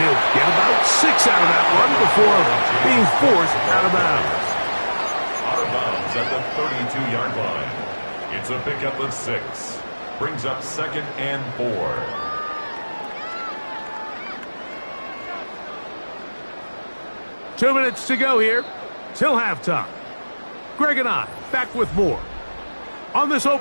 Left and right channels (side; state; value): both; inverted; correlation -1.00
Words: he'll get about 6 out of that one before being forced out of bounds. Out of bounds at the 32-yard line. It's a pickup of 6. Brings up 2nd and 4. Two minutes to go here till halftime. Greg and I back with more on this